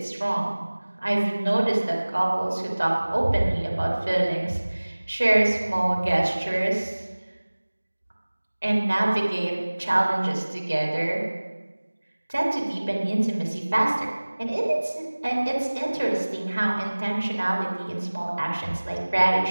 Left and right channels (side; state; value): both; inverted; correlation -1.00